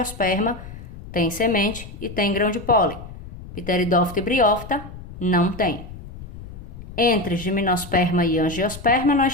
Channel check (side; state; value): left; noise; rumble, 14 dB below the sound